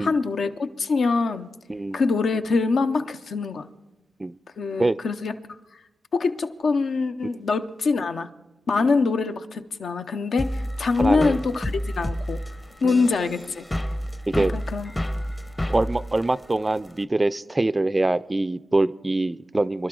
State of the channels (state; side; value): normal; both; correlation 0.92